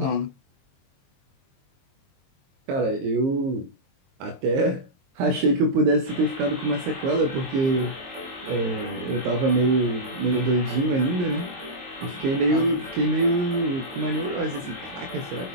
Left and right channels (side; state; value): left; late; 22 ms